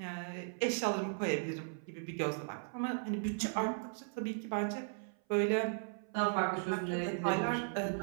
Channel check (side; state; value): left; silent; 53 dB below the other